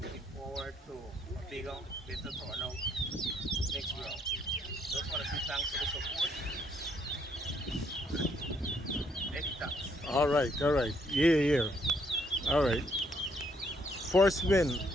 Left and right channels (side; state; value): both; normal; correlation 0.70